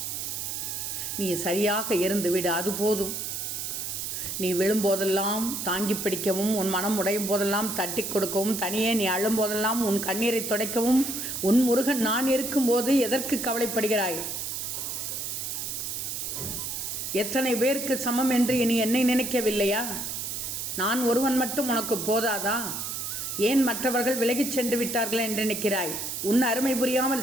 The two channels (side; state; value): right; noise; hiss, 4 dB below the sound